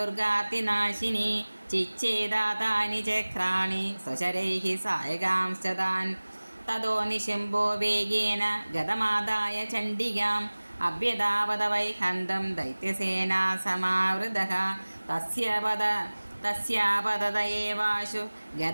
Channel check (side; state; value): both; inverted; correlation -1.00